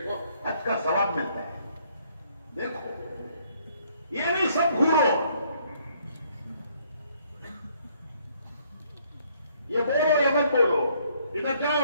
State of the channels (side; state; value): both; inverted; correlation -0.66